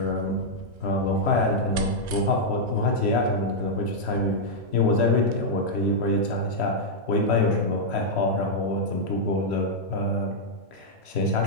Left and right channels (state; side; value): late; left; 1.5 ms